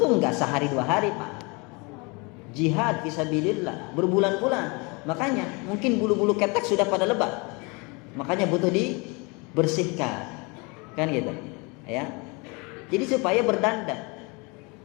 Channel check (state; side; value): quieter; right; 29.1 dB